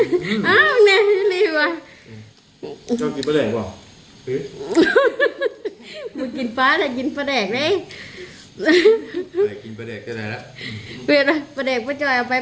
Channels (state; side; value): identical; both; correlation 1.00